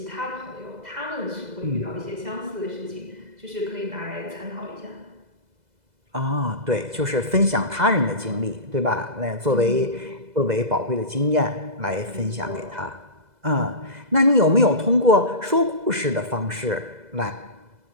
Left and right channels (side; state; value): left; late; 2.0 ms